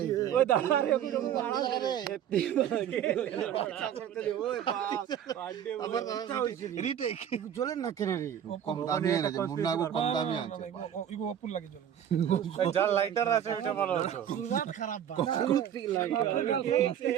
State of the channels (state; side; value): quieter; left; 9.8 dB